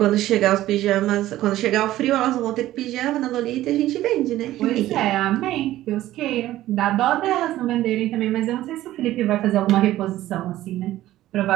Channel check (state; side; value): quieter; left; 14.7 dB